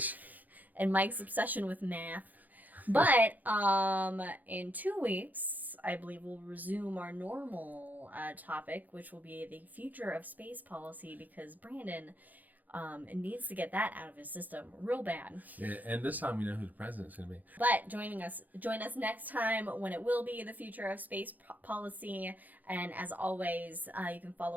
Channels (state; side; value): late; left; 0.082 ms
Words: And Mike's obsession with math. But in 2 weeks, I believe we'll resume our normal topic, which will be the future of space policy, because Brandon needs to get that out of his system real bad. Yeah, and this time we know who the president's going to be. But join us next time when it will be the future of space policy. And as always, you can